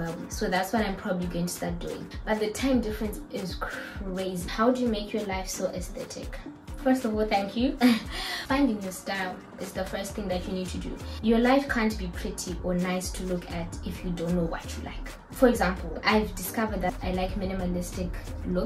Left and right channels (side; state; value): both; identical; correlation 1.00